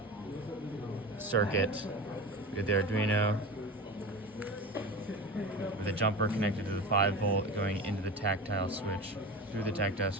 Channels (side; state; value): both; normal; correlation 0.29